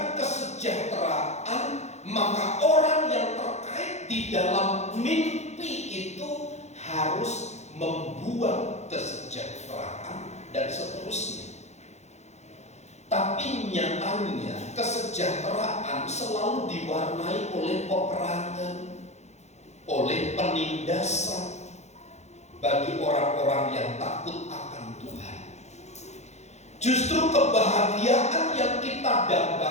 kesejahteraan, maka orang yang terkait di dalam mimpi itu harus membuat kesejahteraan dan seterusnya? Tapi nyatanya kesejahteraan selalu diwarnai oleh peperangan, oleh penindasan bagi orang-orang yang takut akan Tuhan. Justru kebahagiaan yang kita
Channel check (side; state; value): right; late; 0.33 ms